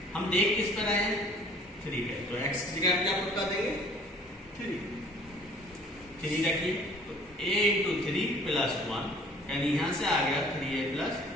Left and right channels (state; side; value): normal; both; correlation 0.53